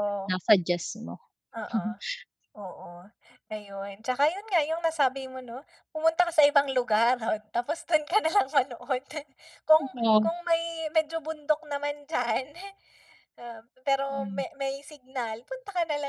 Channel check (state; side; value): identical; both; correlation 1.00